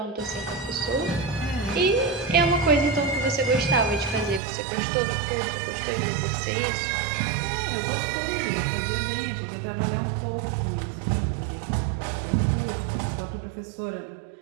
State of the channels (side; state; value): left; drops out; at 4.4 s